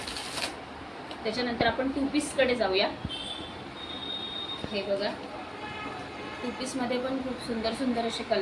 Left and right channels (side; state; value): both; identical; correlation 1.00